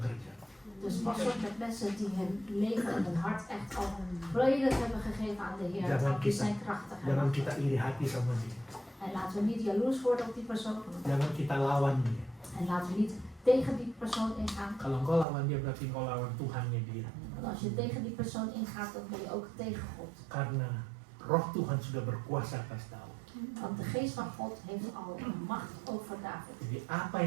Dus pas op met mensen die hun leven en hun hart echt al volledig hebben gegeven aan de Heer. Want die zijn krachtig. Jangan kita iri hati sama dia. En laten we niet jaloers worden op die persoon. Jangan kita lawan dia. En laten we niet tegen die persoon ingaan. Kalau engkau lawan dia berarti engkau lawan Tuhannya dia. Want als je tegen die persoon ingaat, dan ben je ook tegen God. Karena Roh Tuhan sudah berkuasa atas Daud. Want de geest van God heeft al macht over David. Jadi apa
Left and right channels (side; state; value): left; drops out; at 15.2 s